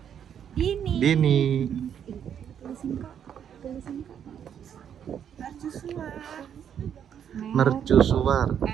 Ini. Dini. Tulisin kak. Mercusuar.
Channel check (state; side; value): quieter; left; 8.7 dB